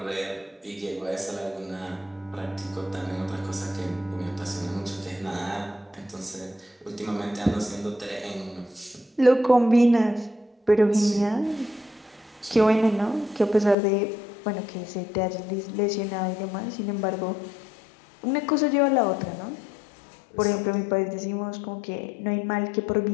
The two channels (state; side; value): drops out; right; at 13.8 s